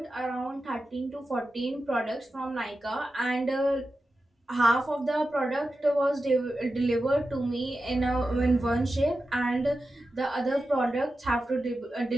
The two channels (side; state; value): both; normal; correlation 0.92